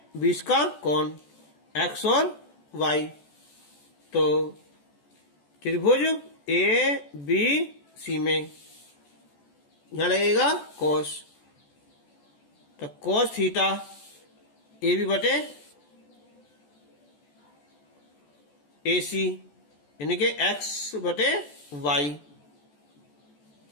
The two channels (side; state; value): right; late; 14 ms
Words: बीच का कोण x और y। तो त्रिभुज ABC में यहां लगेगा cos, तो cos थीटा AB बटे AC यानी कि x/y,